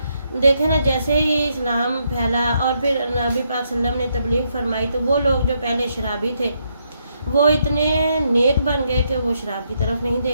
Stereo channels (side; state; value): both; inverted; correlation -0.77